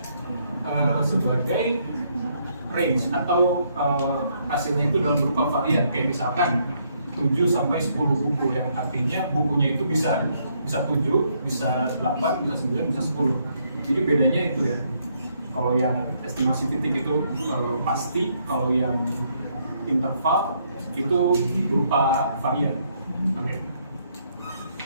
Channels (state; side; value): inverted; both; correlation -0.72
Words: sebagai range atau hasilnya itu dalam berupa varian, kayak misalkan 7 sampai 10 buku, yang artinya bukunya itu bisa 7, bisa 8, bisa 9, bisa 10. Jadi bedanya itu ya. Kalau yang estimasi titik itu pasti, kalau yang interval itu berupa varian. Oke.